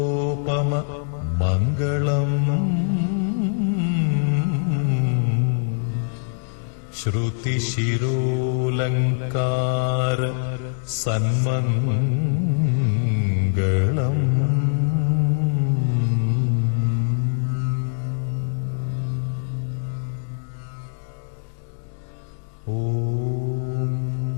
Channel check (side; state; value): right; silent; digital silence